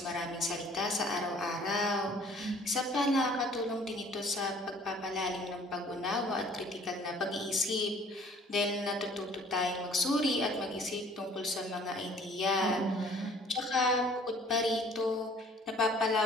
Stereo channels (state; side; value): normal; both; correlation 0.54